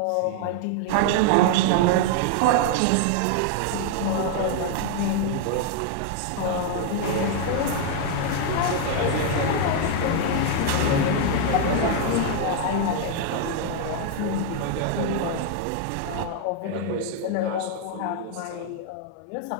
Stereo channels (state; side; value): different; both; correlation 0.00